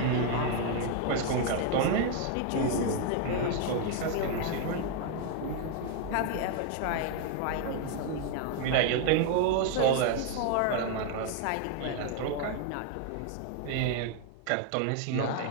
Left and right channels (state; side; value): different; both; correlation 0.00